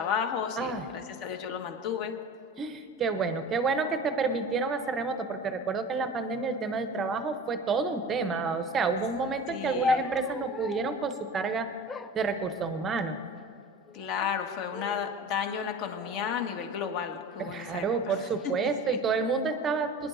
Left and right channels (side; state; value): both; normal; correlation 0.36